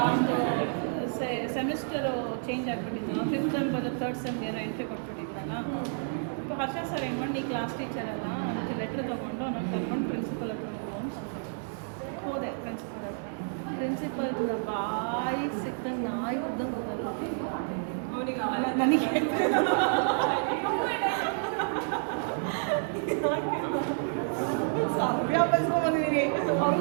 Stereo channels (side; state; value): left; silent; digital silence